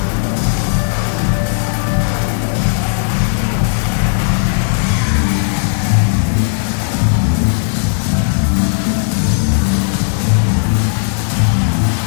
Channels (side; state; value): right; silent; 63 dB below the other